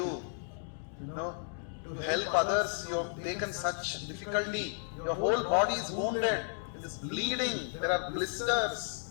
You know, to help others, you have taken such difficulty. Your whole body is wounded. It is bleeding. There are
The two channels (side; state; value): right; silent; digital silence